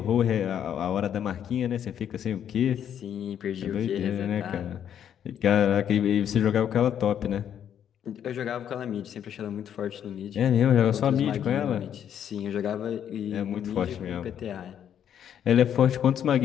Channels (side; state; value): right; quieter; 9.4 dB